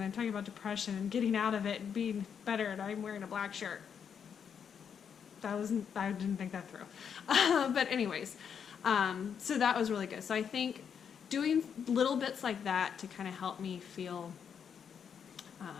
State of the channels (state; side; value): quieter; right; 7.4 dB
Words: I'm talking about depression and getting out of it and being better, and I'm wearing a black shirt. I didn't think that through. But anyways, so that was really good. So I think doing little bits like that to kind of help me feel